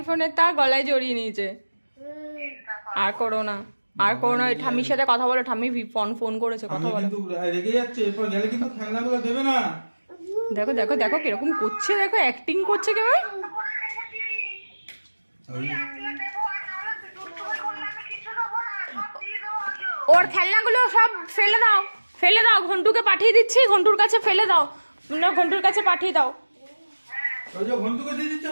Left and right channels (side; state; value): both; inverted; correlation -1.00